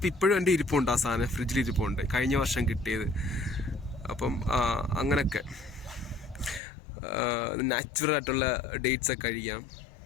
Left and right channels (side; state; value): right; drops out; at 6.6 s